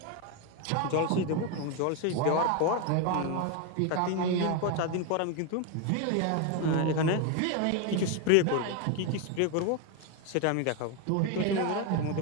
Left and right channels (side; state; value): both; different; correlation 0.02